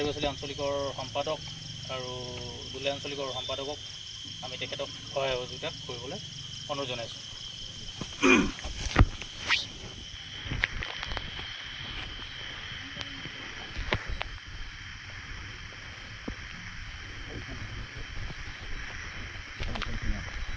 আঞ্চলিকৰ সম্পাদক আৰু দুলীয়া আঞ্চলিকৰ সম্পাদকক আমি তেখেতক সহায় সহযোগিতা কৰিবলৈ অনুৰোধ জনাইছোঁ।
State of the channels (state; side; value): identical; both; correlation 1.00